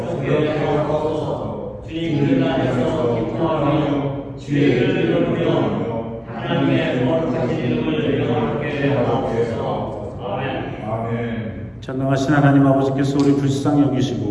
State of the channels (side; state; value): both; identical; correlation 1.00